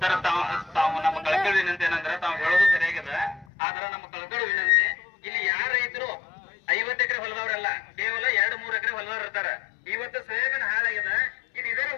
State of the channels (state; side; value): drops out; right; at 3.5 s